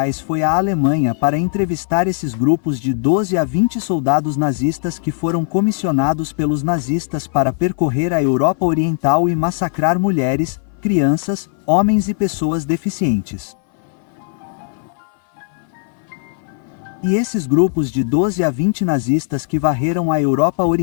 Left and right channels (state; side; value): silent; right; 59 dB below the other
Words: foi à Alemanha para entrevistar esses grupos de 12 a 20 soldados nazistas que foram comissionados pelos nazistas para percorrer a Europa Oriental e massacrar mulheres, crianças, homens e pessoas deficientes. E esses grupos de 12 a 20 nazistas que varreram a Europa